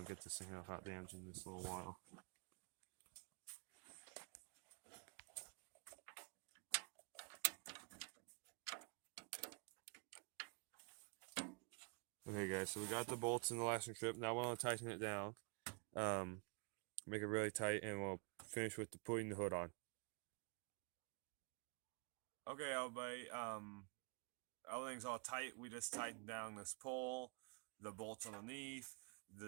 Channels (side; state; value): left; quieter; 34.4 dB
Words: to get this thing without damaging this little while. Okay guys, so we got the bolts in the lashing strip. Now we're going to tighten it down. Make it really tight, and we'll finish with putting the hood on. Okay everybody, everything's all tight. We just tightened down this pole, the bolts underneath,